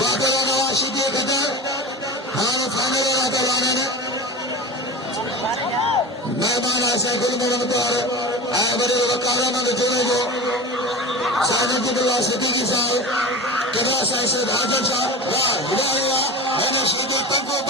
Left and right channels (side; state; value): both; normal; correlation 0.30